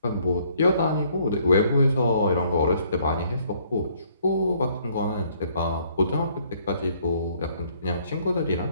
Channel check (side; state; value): both; inverted; correlation -0.65